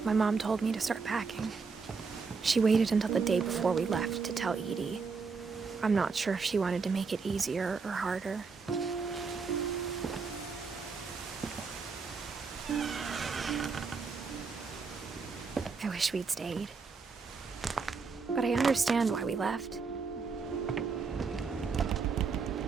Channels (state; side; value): quieter; left; 4.9 dB